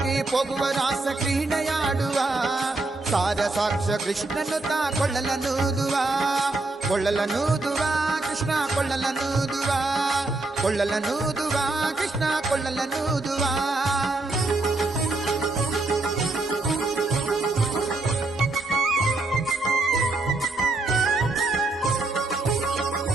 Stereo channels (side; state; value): left; quieter; 3.1 dB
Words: ಹೋಗುವ ರಾಸ ಕ್ರೀಡೆಯಾಡುವ ಸಾರ ಸಾಕ್ಷ ಕೃಷ್ಣನು ತಾ ಕೊಳ್ಳಲನೂದುವ ಕೊಳ್ಳಲನೂದುವ ಕೃಷ್ಣ ಕೊಳ್ಳಲನೂದುವ ಕೊಳ್ಳಲನೂದುವ ಕೃಷ್ಣ ಕೊಳ್ಳಲನೂದುವ